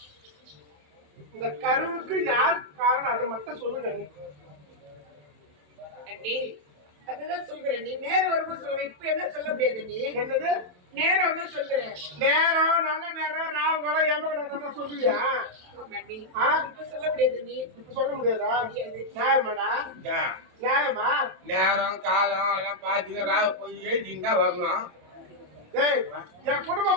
இந்த கருவுக்கு யார் காரணம் அது மட்டும் சொல்லுங்க நீ. அண்ணி அதுதான் சொல்கிறேன் நீ நேரம் வரும்போது சொல்லுவேன் இப்ப என்ன சொல்ல முடியாது நீ என்னது நேரம் வந்து சொல்கிறேன் நேரம் நல்ல நேரம் ராவு கடை எமகடை சொல்லுவியா? ஆமாண்டி ஆ இப்ப சொல்ல முடியாது நீ இப்ப சொல்ல முடியாதா? முடியாது. நியாயமாடா? நியாயமா? நேரம் காலம் எல்லாம் பார்த்து ராவ போய் எழுதிங்க தான் வரணும். டேய் என்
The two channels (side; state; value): left; late; 27 ms